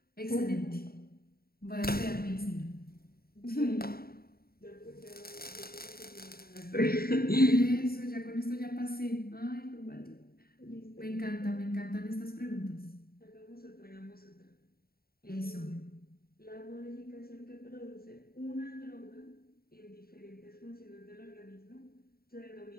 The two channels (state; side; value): late; right; 0.44 ms